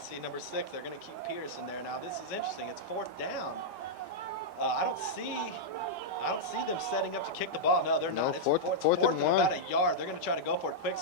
number 6. They're going to keep Pierce in there. Now, this is interesting. It's 4th down. I don't see them setting up to kick the ball. No, they're not. It's fourth and 1. About a yard. They're going to try to go for it. Quick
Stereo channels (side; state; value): both; normal; correlation -0.07